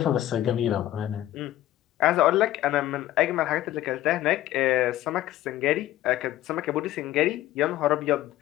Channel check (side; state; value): right; quieter; 14.2 dB